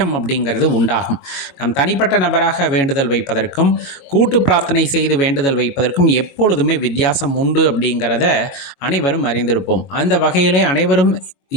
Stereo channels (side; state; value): right; late; 22 ms